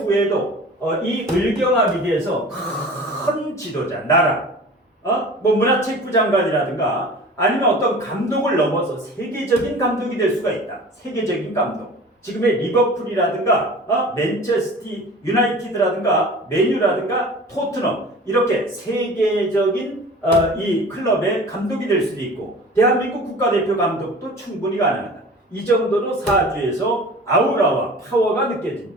이 을경합이 돼서 큰 지도자, 나라, 문화체육부 장관이라든가 아니면 어떤 감독을 넘어서 세계적인 감독이 될 수가 있다. 세계적인 감독. 지금의 리버풀이라든가 맨체스터 유나이티드라든가 맨유라든가 토트넘, 이렇게 세계적인 이 클럽의 감독이 될 수도 있고 대한민국 국가대표 감독도 충분히 가능하다. 이 정도로 사주에서 아우라와 파워가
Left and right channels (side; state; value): both; normal; correlation 0.41